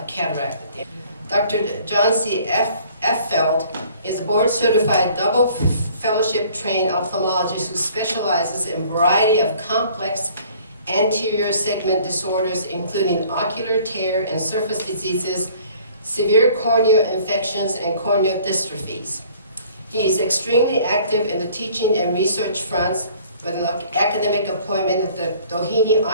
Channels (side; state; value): both; inverted; correlation -0.54